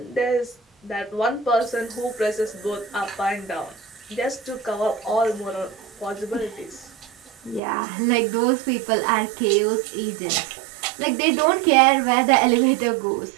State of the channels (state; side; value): drops out; left; at 7.6 s